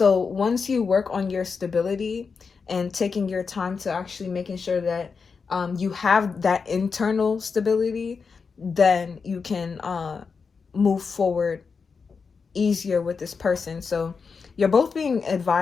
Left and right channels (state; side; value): quieter; right; 5.3 dB